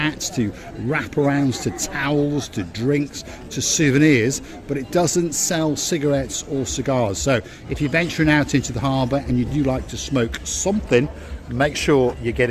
to wraparounds to towels to drinks to souvenirs, but it doesn't sell cigarettes or cigars. So if you're venturing out into the harbour and you do like to smoke something, make sure you get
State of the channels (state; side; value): identical; both; correlation 1.00